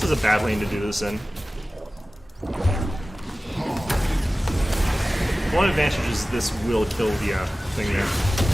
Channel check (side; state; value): both; normal; correlation 0.96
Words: is a bad lane to do this in. One advantage is this will kill the thing there.